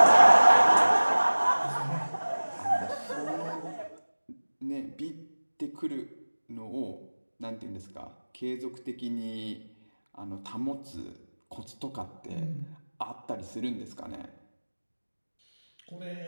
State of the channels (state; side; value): inverted; both; correlation -1.00